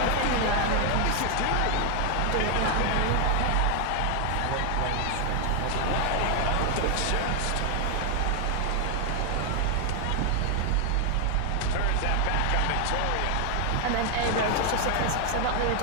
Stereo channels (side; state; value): both; different; correlation 0.00